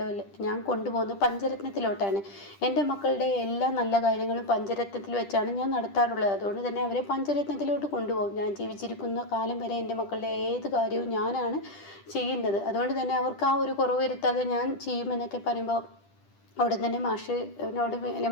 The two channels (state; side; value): late; right; 10 ms